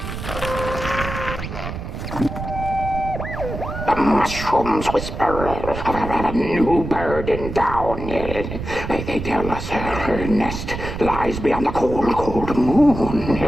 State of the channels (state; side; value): noise; right; rumble, 7 dB below the sound